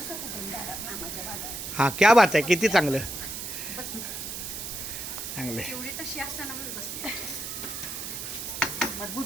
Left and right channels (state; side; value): noise; right; hiss, 6 dB below the sound